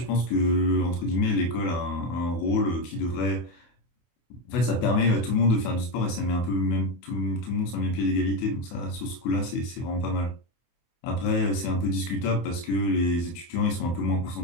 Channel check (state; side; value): late; right; 24 ms